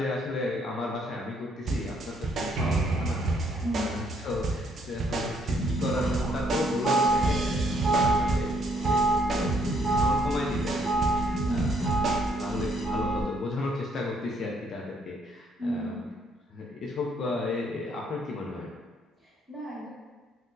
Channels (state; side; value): normal; both; correlation 0.69